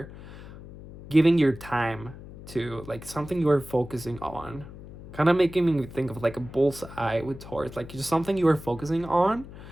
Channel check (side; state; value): left; noise; hum, 15 dB below the sound